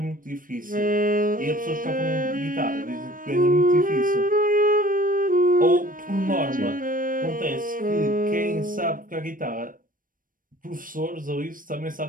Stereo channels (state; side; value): late; left; 0.40 ms